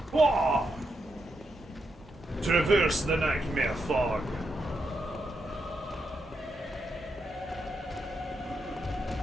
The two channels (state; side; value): normal; both; correlation 0.83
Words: Whoa! Traverse the nightmare fog.